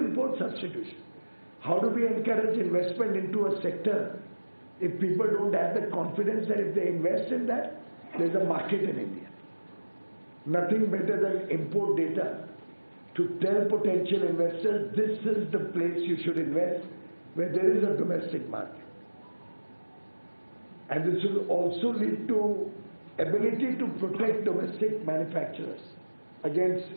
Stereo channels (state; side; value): inverted; both; correlation -1.00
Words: substitution? How do we encourage investment into a sector if people don't have the confidence that if they invest in that, there's a market in India? Nothing better than import data to tell potential investors, this is the place you should invest where there is a domestic market. And this will also lead to ability to protect domestic manufacturers against